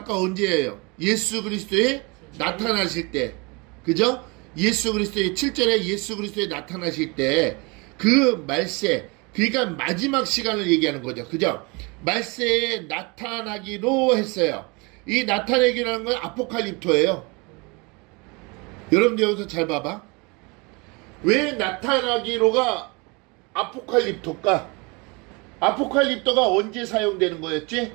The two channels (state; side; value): quieter; left; 28.4 dB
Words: 언제예요? 예수 그리스도에 나타나실 때, 그죠? 예수 그리스도의 7절에 예수 그리스도에 나타나실 때 그 말세, 그러니까 마지막 시간을 얘기하는 거죠. 그죠? 말세에 나타나기로 했어요. 이 나타내기라는 건 아포칼립토예요. 여러분들 여기서 잘 봐봐. 왜 나타나기로가 아포칼립토일까? 아포칼립토가 언제 사용되는 거였지?